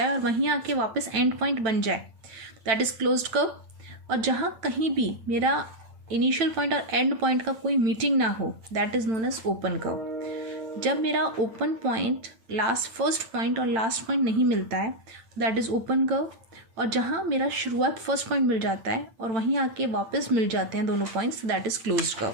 है और वहीं आके वापस एंड पॉइंट बन जाए, दैट इज क्लोज्ड कर्व. और जहाँ कहीं भी मेरा इनिशियल पॉइंट और एंड पॉइंट का कोई मीटिंग ना हो, that is known as open curve. जब मेरा ओपन पॉइंट फर्स्ट पॉइंट और लास्ट पॉइंट नहीं मिलता है, दैट इज ओपन कर्व. और जहाँ मेरा शुरुआत फर्स्ट पॉइंट मिल जाता है और वहीं आके वापस मिल जाते हैं दोनों points, that is closed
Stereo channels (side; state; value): left; late; 9.0 ms